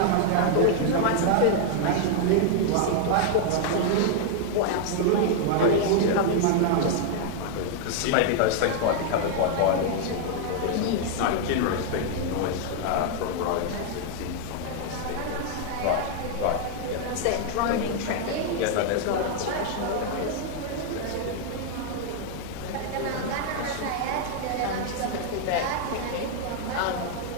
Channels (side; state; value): both; different; correlation 0.00